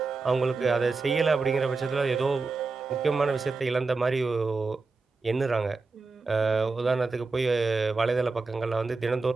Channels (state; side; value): quieter; left; 4.0 dB